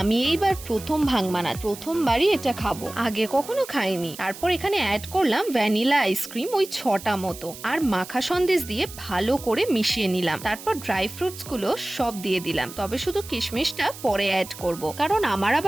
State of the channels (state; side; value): noise; right; hiss, 14 dB below the sound